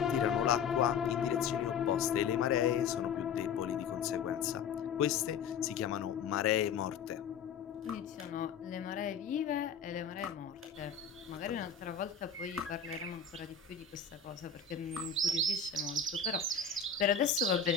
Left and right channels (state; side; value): quieter; right; 6.2 dB